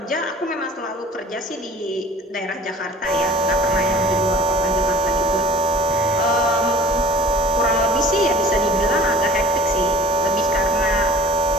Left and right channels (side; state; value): both; normal; correlation 0.49